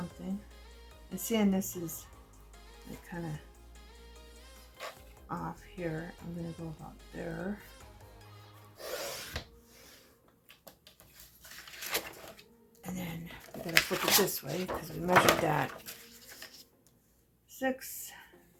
And seeing this is like kind of off here, I'm going to go about there. And then we got to flip it this way because we measured that. 6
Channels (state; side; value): identical; both; correlation 1.00